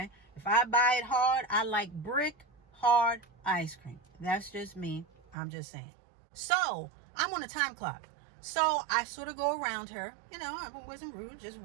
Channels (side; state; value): left; drops out; at 5.4 s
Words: If I buy it hard, I like brick hard ice cream. That's just me. I'm just saying. So I'm on a time clock. So I sort of go around her, I wasn't rude, just